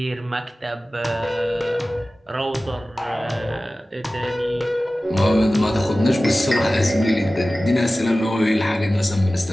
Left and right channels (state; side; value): normal; both; correlation 0.96